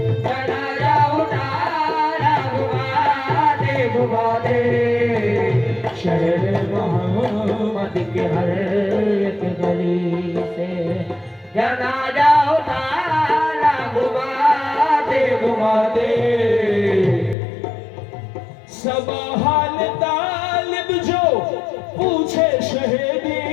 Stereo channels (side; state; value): right; drops out; at 17.4 s